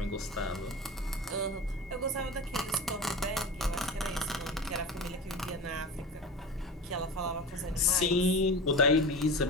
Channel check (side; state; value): both; normal; correlation 0.30